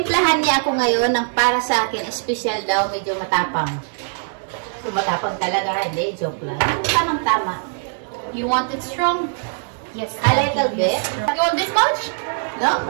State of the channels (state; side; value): silent; left; digital silence